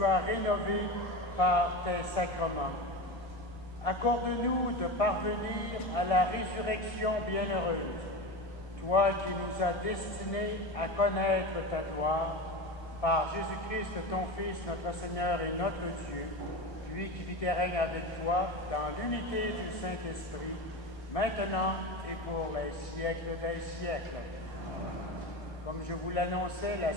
as rénové par tes sacrements. Accorde-nous de parvenir à la résurrection bienheureuse, toi qui nous as destinés à connaître ta gloire, par Jésus-Christ, ton Fils, notre Seigneur et notre Dieu, lui qui vit et règne avec toi dans l'unité du Saint-Esprit, maintenant et pour les siècles des siècles. Comme je vous l'annonçais la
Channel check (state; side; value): late; right; 1.7 ms